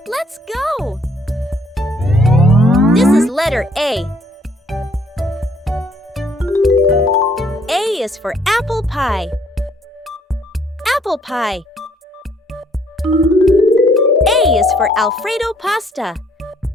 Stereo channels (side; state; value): both; normal; correlation 0.64